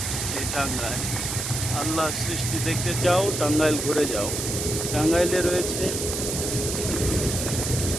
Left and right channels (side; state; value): right; noise; hiss, 3 dB below the sound